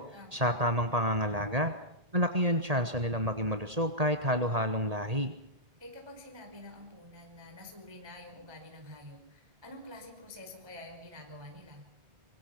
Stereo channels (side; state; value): left; late; 1.8 ms